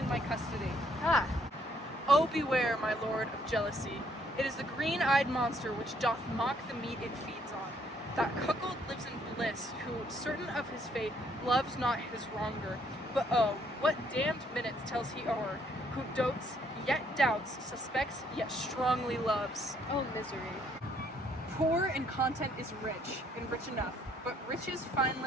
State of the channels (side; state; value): both; normal; correlation 0.67